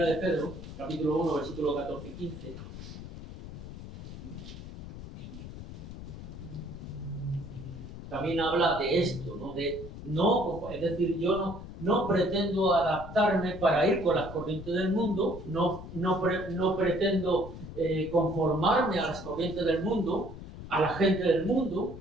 de Pedro, capítulo 1, versículo 14 y 15. También habla de esto, ¿no? Es decir, yo no pretendo adaptarme para ir con las corrientes del mundo, no pretendo conformarme a las corrientes del mundo, a la gente del mundo,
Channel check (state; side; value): noise; left; rumble, 11 dB below the sound